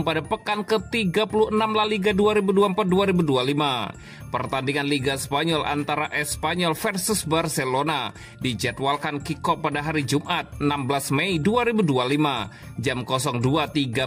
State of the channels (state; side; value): identical; both; correlation 1.00